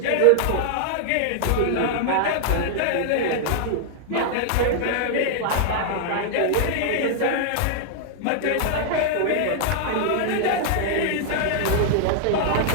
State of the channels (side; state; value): both; different; correlation -0.01